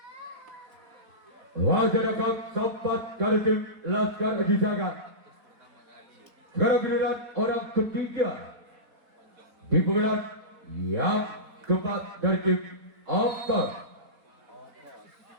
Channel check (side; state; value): left; late; 4.2 ms